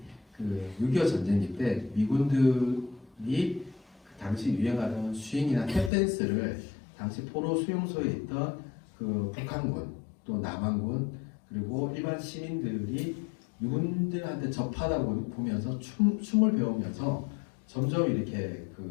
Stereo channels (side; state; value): right; drops out; at 5.9 s